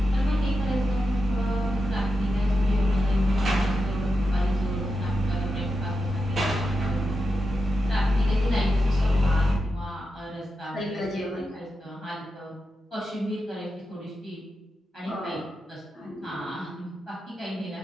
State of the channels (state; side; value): normal; both; correlation 0.89